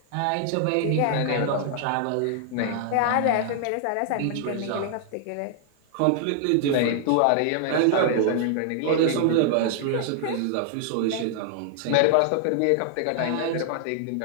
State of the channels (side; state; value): both; different; correlation 0.00